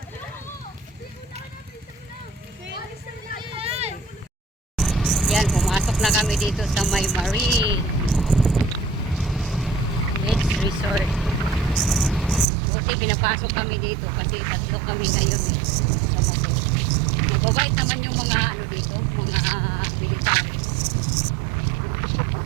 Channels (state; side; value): drops out; left; at 12.5 s